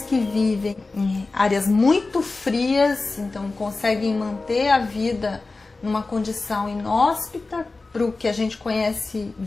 que vivem em áreas muito frias, então conseguem manter a vida numa condição inóspita para o que a gente conhece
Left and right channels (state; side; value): quieter; right; 3.6 dB